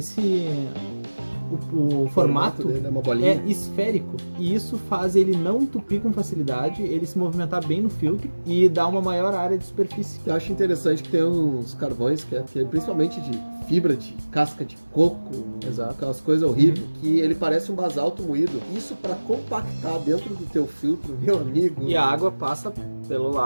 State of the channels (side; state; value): both; inverted; correlation -1.00